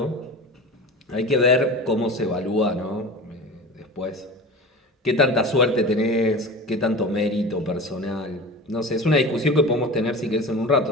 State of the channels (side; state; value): both; normal; correlation 0.33